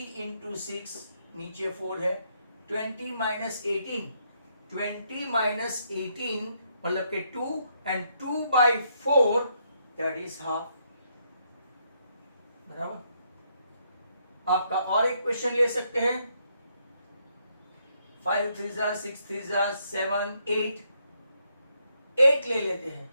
इंटू 6, नीचे 4 है, 20 माइनस 18, 20 माइनस 18 मतलब के 2 एंड 2/4 दैट इज हाफ। बराबर। आपका और एक क्वेश्चन ले सकते हैं, 5 3 6 3 7 8, 8 ले लेते हैं,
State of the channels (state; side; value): inverted; both; correlation -0.75